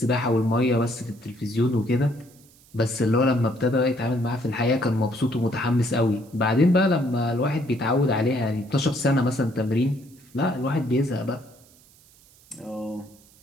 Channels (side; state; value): right; noise; hiss, 28 dB below the sound